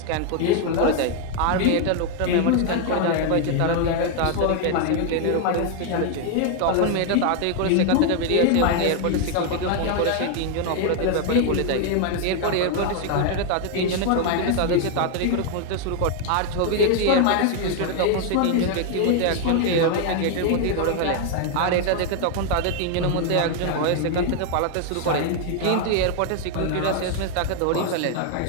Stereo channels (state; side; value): different; both; correlation 0.00